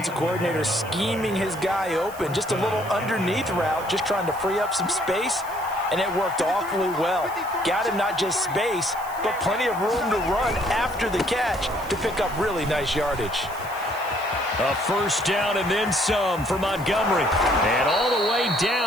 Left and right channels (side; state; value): right; noise; hiss, 18 dB below the sound